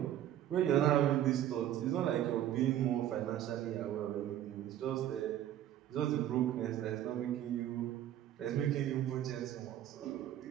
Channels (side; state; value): left; quieter; 11.8 dB